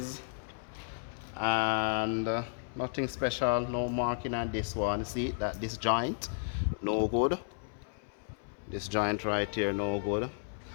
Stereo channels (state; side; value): silent; right; 56 dB below the other